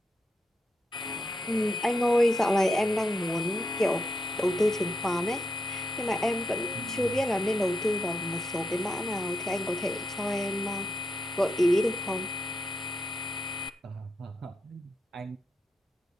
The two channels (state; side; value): normal; both; correlation 0.83